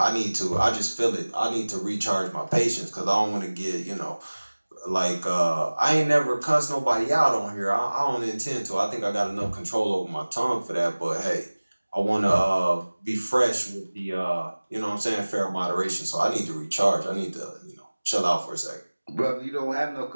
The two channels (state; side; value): inverted; both; correlation -1.00